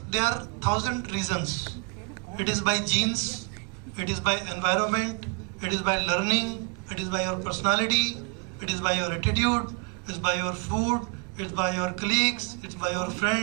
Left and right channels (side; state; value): left; quieter; 35.4 dB